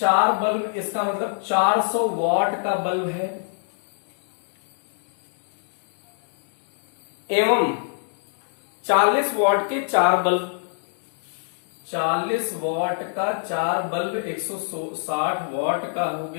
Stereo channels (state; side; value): silent; right; digital silence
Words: बल्ब, इसका मतलब 400 वॉट का बल्ब है, एवं 40 वॉट के 4 बल्ब, 40 वॉट का 4 बल्ब 160 वॉट का हो